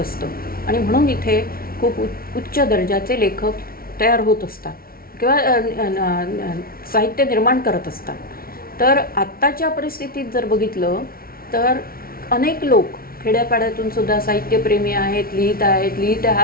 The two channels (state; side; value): late; right; 0.43 ms